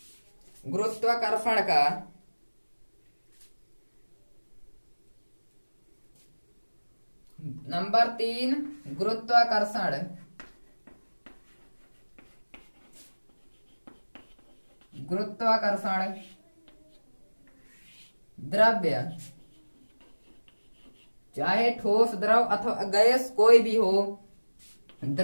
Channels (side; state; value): both; inverted; correlation -1.00